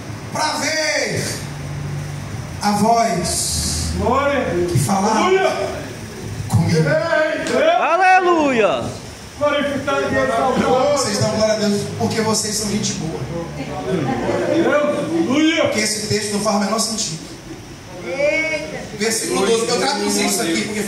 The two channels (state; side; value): identical; both; correlation 1.00